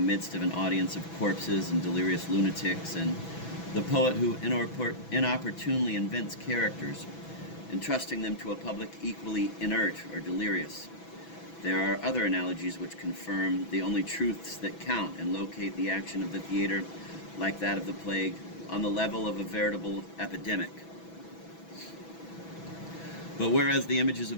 of an audience of corpses and delirious lunatics, and the poet who inopportunely invents characters, entrusting them to a public equally inert or delirious. There are other analogies which confirm the only truths that count and locate the action of the theater, like that of the plague, on the level of a veritable epidemic. But whereas the images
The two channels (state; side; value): late; right; 6.1 ms